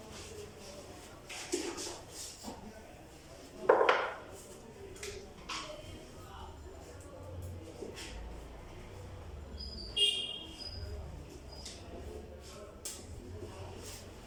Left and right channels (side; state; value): both; identical; correlation 1.00